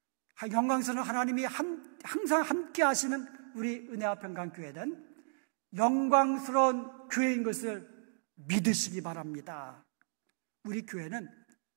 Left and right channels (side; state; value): left; silent; digital silence